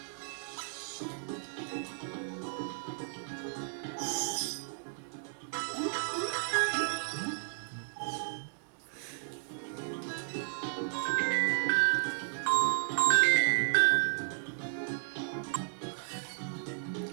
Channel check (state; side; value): silent; left; 55 dB below the other